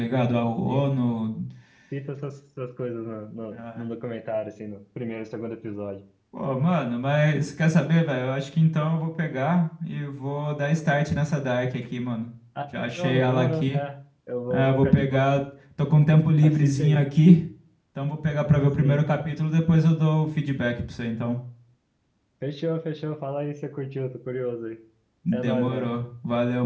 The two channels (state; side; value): identical; both; correlation 1.00